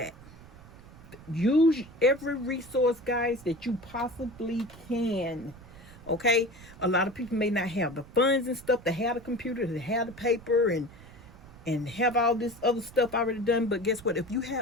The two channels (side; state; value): right; noise; rumble, 19 dB below the sound